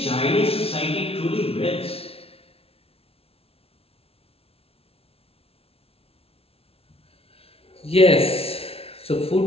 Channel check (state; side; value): late; right; 0.28 ms